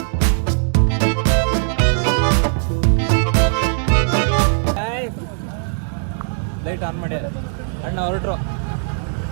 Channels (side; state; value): left; silent; 66 dB below the other